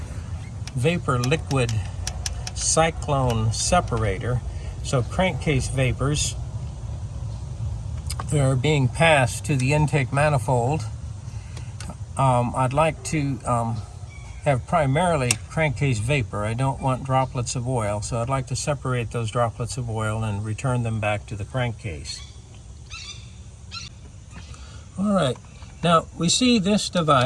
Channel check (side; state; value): both; identical; correlation 1.00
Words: vapor liquid cyclone separator. So crankcase vapors that are being passed to the intake manifold. I'd like to have primarily crankcase vapor. I don't want droplets of oil, so I'd like to separate those droplets of oil and return them back to the crankcase. All right, now we see this